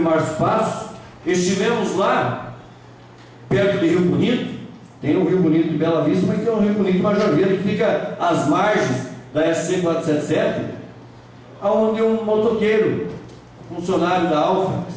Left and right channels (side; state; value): both; identical; correlation 1.00